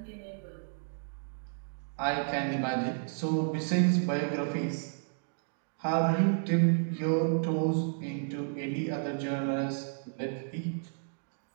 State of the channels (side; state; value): left; silent; digital silence